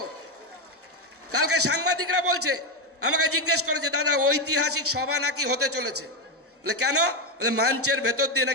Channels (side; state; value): both; normal; correlation 0.09